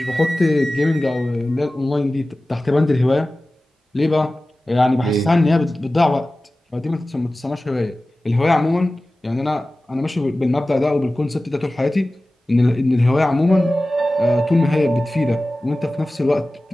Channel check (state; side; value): normal; both; correlation 0.96